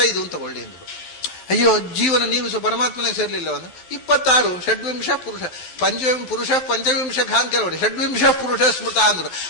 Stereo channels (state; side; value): late; right; 12 ms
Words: ಅಂತ ತಗೊಳ್ಳಿ ಅಂದ್ರು. ಅಯ್ಯೋ, ಜೀವನ ನೀವು ಪರಮಾತ್ಮನೇ ಸೇರ್ಲಿಲ್ಲ ಅಂದ್ರೆ 26 ಷಡ್ವಿಂಶ ಪುರುಷ ಪುರುಷ ಪಂಚವಿಂಶ ಅಂತ ಕೆಲವರು ಷಡ್ವಿಂಶ ಪುರುಷ ಸ್ಮೃತ ಅಂದ್ರು.